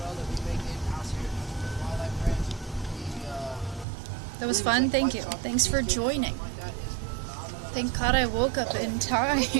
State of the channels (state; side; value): drops out; left; at 3.9 s